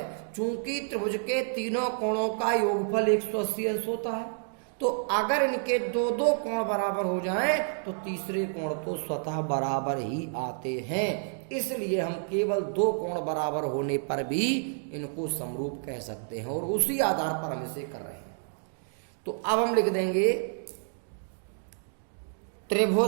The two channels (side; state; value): left; silent; digital silence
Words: चूंकि त्रिभुज के तीनों कोणों का योगफल 180 अंश होता है, तो अगर इनके दो दो कोण बराबर हो जाएं तो तीसरे कोण तो स्वतः बराबर ही आते हैं। इसलिए हम केवल दो कोण बराबर होने पर भी इनको समरूप कह सकते हैं और उसी आधार पर हम इसे कर रहे हैं। तो अब हम लिख देंगे